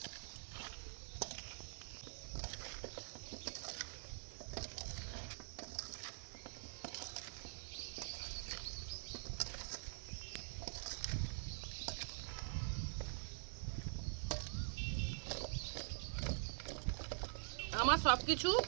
আমার সব কিছু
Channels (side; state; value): left; silent; digital silence